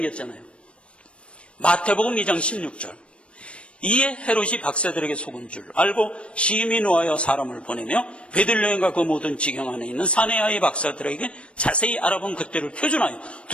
마태복음 2장 16절. 이에 헤롯이 박사들에게 속은 줄 알고 심히 노하여 사람을 보내며 베들레헴과 그 모든 지경 안에 있는 사내아이 박사들에게 자세히 알아본 그때를 표준하여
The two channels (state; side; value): late; right; 0.059 ms